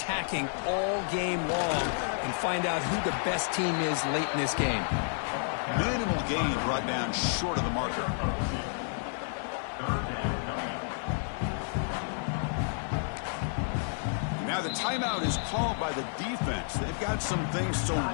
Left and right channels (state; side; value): silent; right; 57 dB below the other